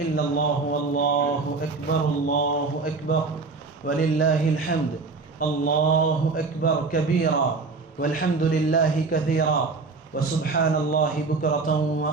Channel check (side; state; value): left; quieter; 4.0 dB